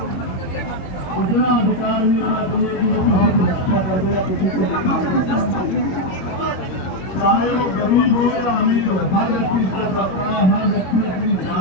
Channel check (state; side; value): late; right; 22 ms